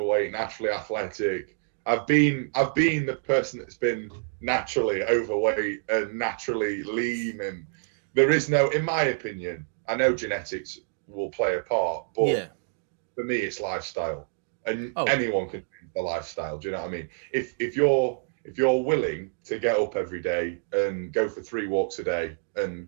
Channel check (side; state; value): left; silent; digital silence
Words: naturally athletic. I've been the person that's been naturally overweight and naturally lean, and there is no, in my opinion, I know genetics will play a part, but for me it's lifestyle, and anyone can change the lifestyle. Do you know what I mean? If you're willing to get up every day and go for 3 walks a day